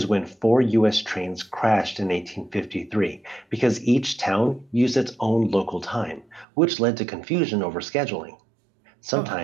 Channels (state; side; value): drops out; left; at 6.5 s